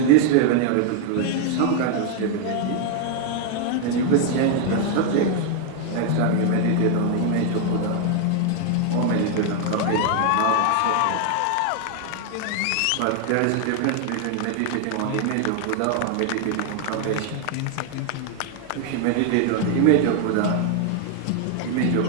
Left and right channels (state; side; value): different; both; correlation 0.00